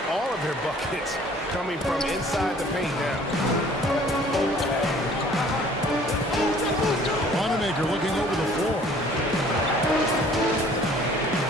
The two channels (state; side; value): normal; both; correlation 0.54